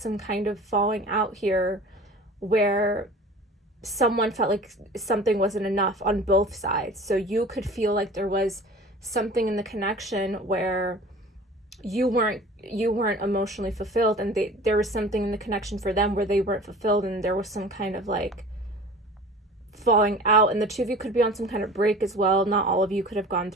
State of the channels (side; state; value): both; normal; correlation 0.42